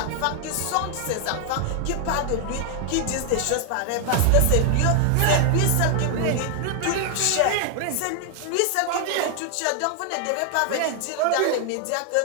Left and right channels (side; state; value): both; different; correlation 0.00